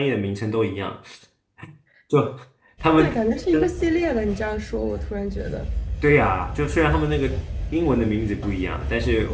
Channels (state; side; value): identical; both; correlation 1.00